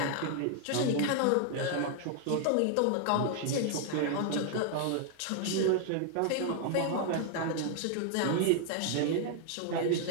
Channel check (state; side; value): different; both; correlation 0.00